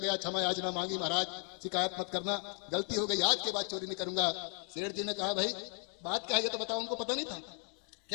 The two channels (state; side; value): quieter; right; 38.6 dB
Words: क्षमा याचना मांगी, महाराज शिकायत मत करना, गलती हो गई, आज के बाद चोरी नहीं करूंगा। सेठ जी ने कहा भाई बात क्या है ये तो बताओ, उनको पता नहीं था।